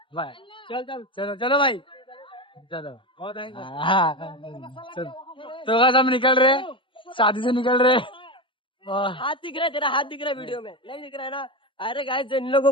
बाय, चल चल चलो चलो भाई, चलो। बहुत है। हाँ चलो, तो बस हम निकल रहे, शादी से निकल रहे। और हाथ दिख रहा है तेरा, हाथ दिख रहा है वीडियो में, नहीं दिख रहा है ना? अरे गाइस इन लोगों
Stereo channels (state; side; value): late; right; 0.25 ms